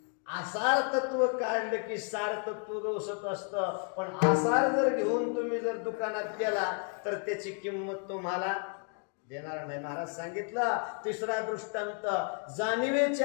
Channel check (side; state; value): right; quieter; 38.5 dB